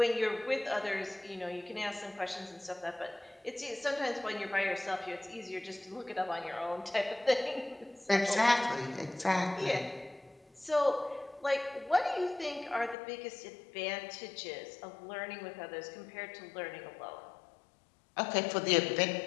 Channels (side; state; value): right; drops out; at 13.0 s